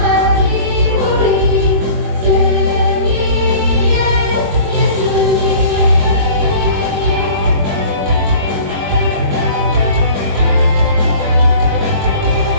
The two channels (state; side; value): late; left; 21 ms